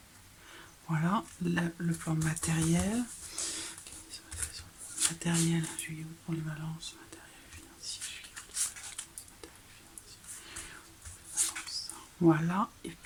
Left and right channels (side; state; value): both; identical; correlation 1.00